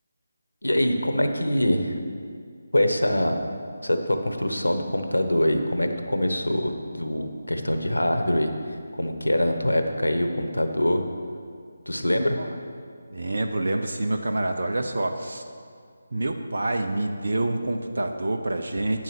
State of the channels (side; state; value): both; inverted; correlation -0.95